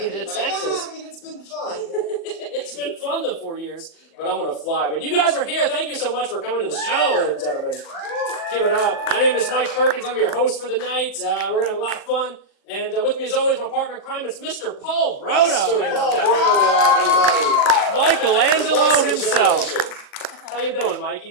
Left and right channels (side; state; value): right; late; 39 ms